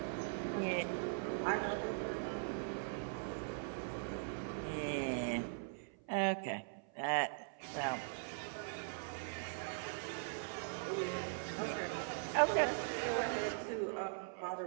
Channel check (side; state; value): left; silent; 50 dB below the other